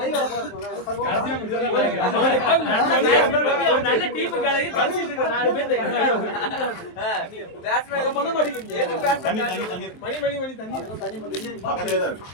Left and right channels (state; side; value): late; right; 23 ms